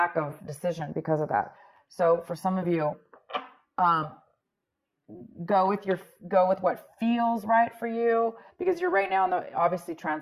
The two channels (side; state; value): both; identical; correlation 1.00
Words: of decision because of that. So for some of you, go with what feels right for you, because you're right now obviously